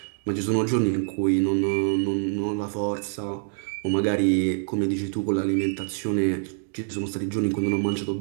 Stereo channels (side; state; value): left; silent; 60 dB below the other